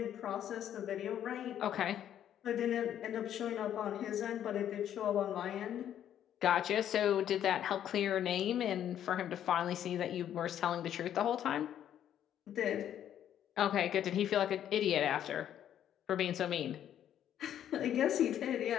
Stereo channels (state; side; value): quieter; right; 10.4 dB